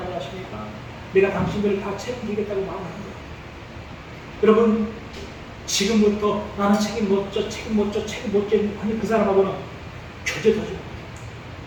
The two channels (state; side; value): identical; both; correlation 1.00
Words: 아십니까? 내가 당신들을 다 책임지겠다고 말하는 거예요. 여러분 지금부터 나는 책임 못 져 아니 그 사람하고는 교제도 하지 못해요.